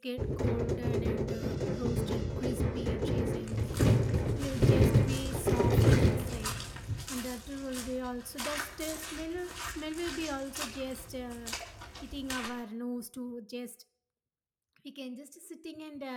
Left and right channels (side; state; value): both; identical; correlation 1.00